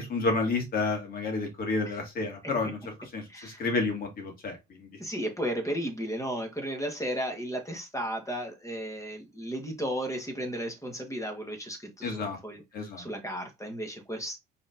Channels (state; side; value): normal; both; correlation 0.42